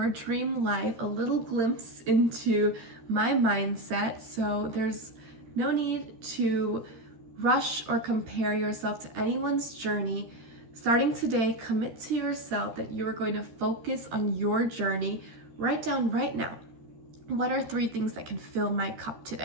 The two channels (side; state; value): left; late; 13 ms